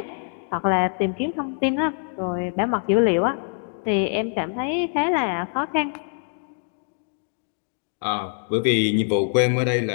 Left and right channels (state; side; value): silent; right; 56 dB below the other